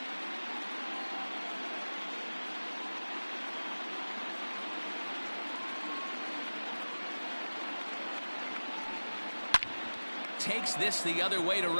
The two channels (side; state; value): both; inverted; correlation -1.00